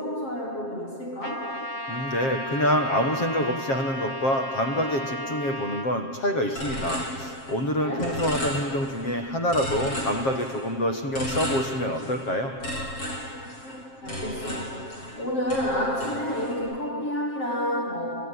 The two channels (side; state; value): right; late; 7.5 ms